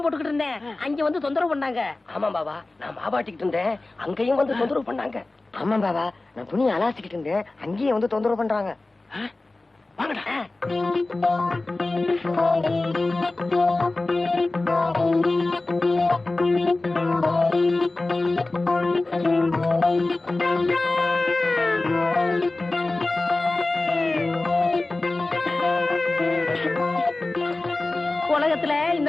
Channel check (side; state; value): right; quieter; 3.1 dB